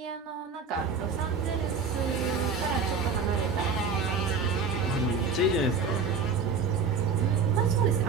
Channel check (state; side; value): quieter; left; 4.9 dB